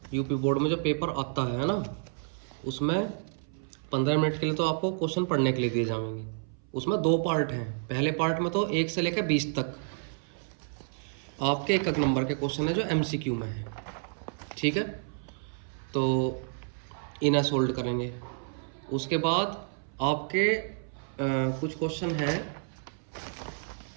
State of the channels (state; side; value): silent; left; 58 dB below the other